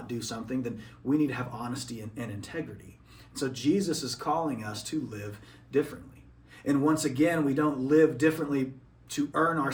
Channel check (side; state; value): both; identical; correlation 1.00